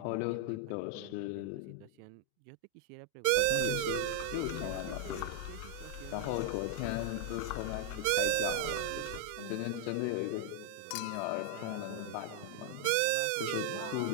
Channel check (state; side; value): different; both; correlation 0.00